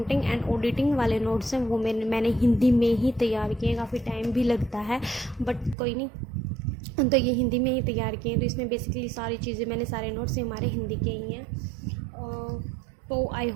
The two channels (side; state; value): left; drops out; at 5.8 s